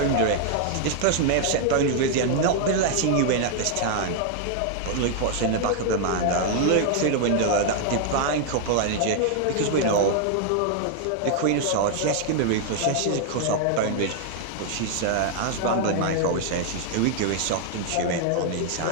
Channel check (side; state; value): both; different; correlation 0.00